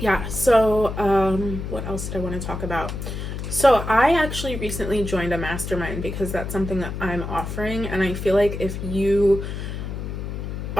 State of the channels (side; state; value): left; noise; hum, 6 dB below the sound